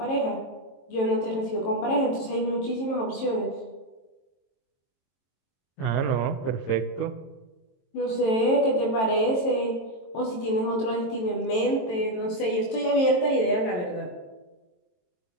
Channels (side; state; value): right; late; 22 ms